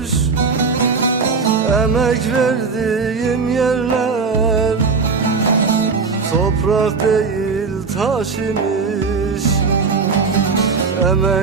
Emek verdiğim yerler toprak değil taş imiş.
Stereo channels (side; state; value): left; quieter; 4.8 dB